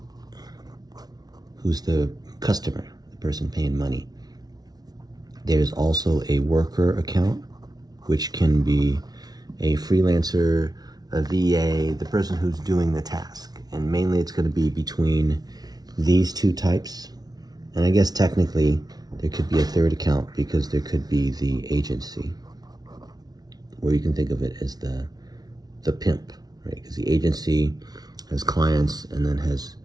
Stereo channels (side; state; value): left; late; 0.19 ms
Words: who's the customer, the person paying money. There's also a worker account, which can be a freelancer, a VA, the person who's doing the task. And mainly it's going to be between these two types. And I guess technically there could be a third account because there could be the agency, or you can think of it as the pimp, right? Because the agency has clients and then has